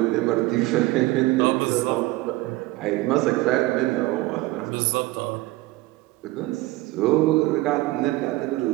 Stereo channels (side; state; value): left; quieter; 19.3 dB